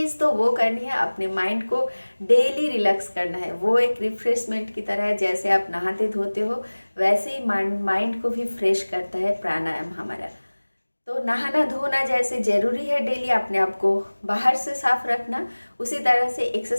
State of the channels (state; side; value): inverted; both; correlation -1.00